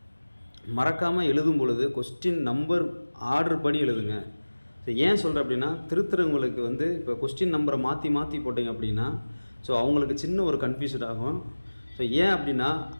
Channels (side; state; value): both; inverted; correlation -1.00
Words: மறக்காமல் எழுதும் பொழுது கொஸ்டின் நம்பர் ஆர்டர் படி எழுதுங்க. ஸோ ஏன் சொல்கிறேன் அப்படின்னா, திருத்துறவங்களுக்கு வந்து இப்போ கொஸ்டின் நம்பரை மாற்றி போட்டிங்க அப்படின்னா ஸோ அவங்களுக்கு சின்ன ஒரு கன்ஃபியூஷன் ஆகும். ஸோ ஏன் அப்படின்னா